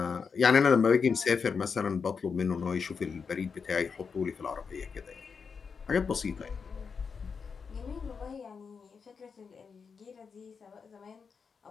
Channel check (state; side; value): quieter; right; 5.7 dB